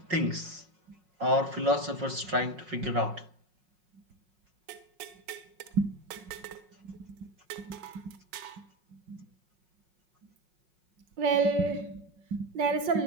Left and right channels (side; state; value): left; late; 5.5 ms